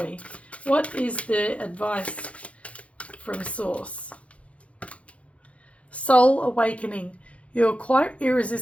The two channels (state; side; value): late; right; 0.063 ms